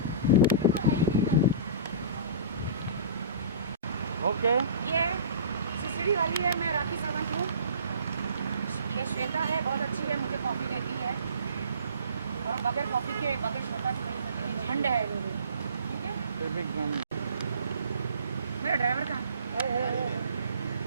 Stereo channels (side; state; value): both; inverted; correlation -0.42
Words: ओके, ये सिसड़ी वाली है, मैं राखी सावंत हूँ। ये श्वेता है, बहुत अच्छी है, मुझे कॉफ़ी देती है। और बगैर कॉफ़ी के बगैर श्वेता के नहीं सकती। झंड है मेरी, ठीक है? मेरा ड्राइवर कहाँ है?